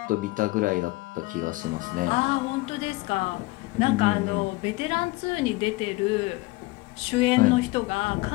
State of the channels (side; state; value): right; quieter; 21.6 dB